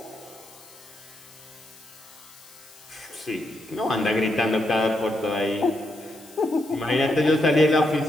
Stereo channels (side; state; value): left; noise; hiss, 22 dB below the sound